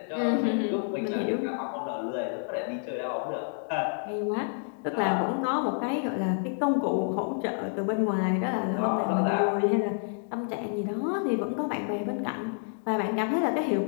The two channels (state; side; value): silent; right; digital silence